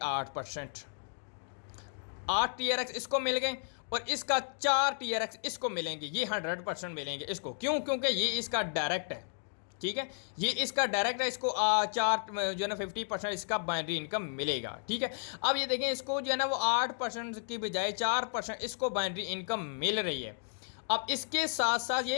8 TRX इसको मिल गए और इसका 4 TRX इसको मिलेंगे, ये 100% मिलेंगे इसको। क्यों? क्योंकि ये इसका डायरेक्ट है, ठीक है, ये इसका डायरेक्ट है, इसको 4 जो है ना 50% इसका बाइनरी इनकम मिलेगा, ठीक है। अब ये देखें इसको जो है ना वो 8% की बजाय 4% इसको बाइनरी इनकम मिल रही है। अब इसके साथ साथ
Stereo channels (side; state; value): right; silent; digital silence